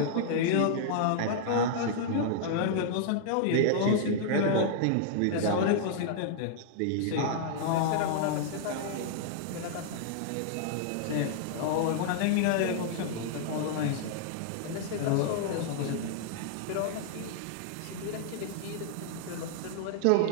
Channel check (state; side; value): different; both; correlation -0.01